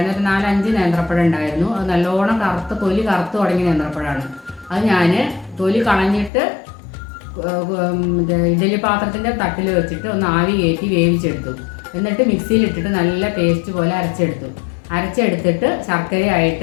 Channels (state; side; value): drops out; right; at 6.3 s